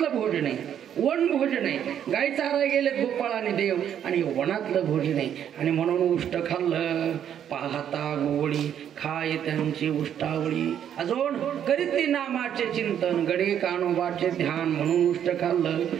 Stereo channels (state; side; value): quieter; left; 9.5 dB